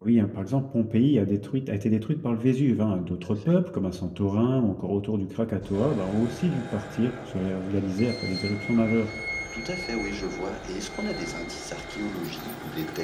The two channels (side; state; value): both; identical; correlation 1.00